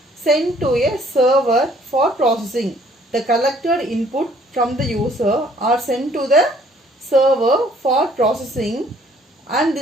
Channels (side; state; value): both; normal; correlation 0.61